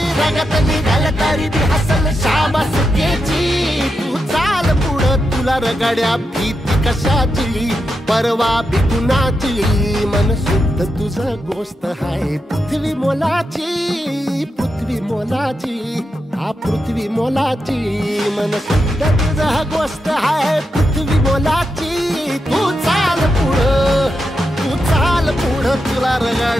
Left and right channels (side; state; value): both; normal; correlation 0.86